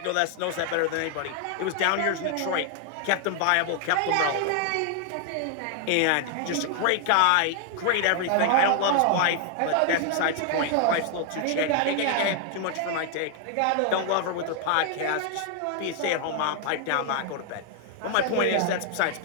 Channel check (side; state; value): both; different; correlation 0.00